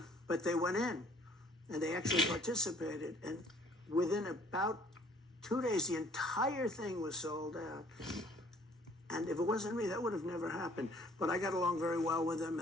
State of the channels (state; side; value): normal; both; correlation 0.58